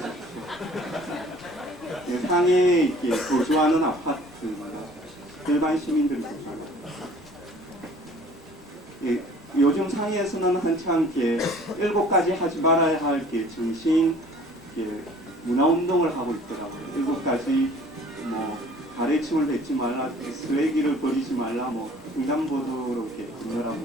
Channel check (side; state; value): both; normal; correlation 0.51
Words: 상해에 이렇게 거주하는 아파트입니다. 일반 시민들이 거주하는. 예, 요즘 상해에서는 한창 이렇게 7가지 하지 말아야 할 이렇게 정신 문화 운동을 하고 있더라고요. 7가지 뭐 가래침을 뱉지 말라, 쓰레기를 버리지 말라, 뭐 횡단보도로 이렇게 건너라고